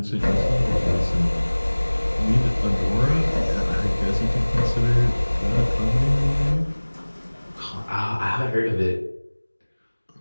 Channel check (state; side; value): inverted; both; correlation -1.00